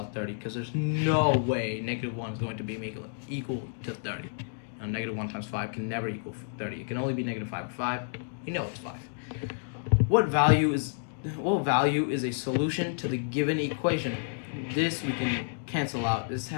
30, because there's no way negative 1 is going to be equal to 30. You know Negative 1 times 5 can never equal 30. It can only be negative 5 or 5. You know it's 5. What value is a solution to the given equation? This we can cancel out. This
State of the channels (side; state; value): right; silent; digital silence